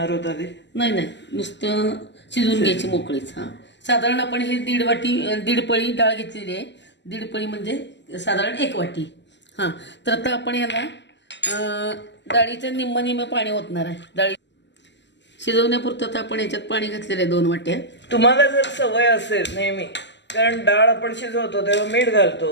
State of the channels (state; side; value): late; right; 0.51 ms